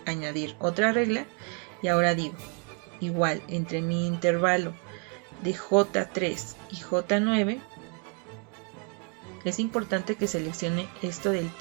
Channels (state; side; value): quieter; left; 34.7 dB